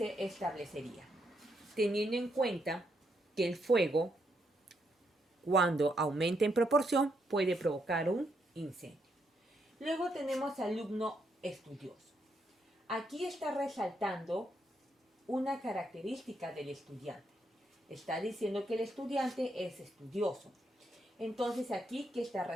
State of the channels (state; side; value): normal; both; correlation 0.78